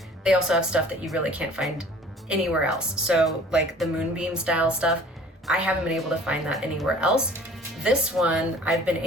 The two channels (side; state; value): both; normal; correlation 0.49